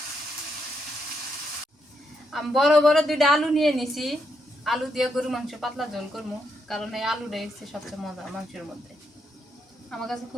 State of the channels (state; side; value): normal; both; correlation 0.79